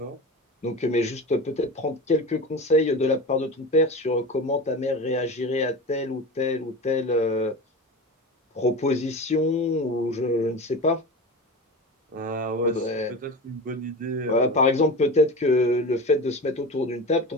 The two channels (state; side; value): normal; both; correlation 0.29